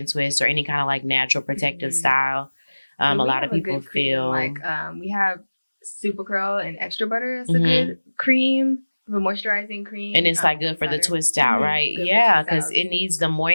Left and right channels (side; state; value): both; inverted; correlation -1.00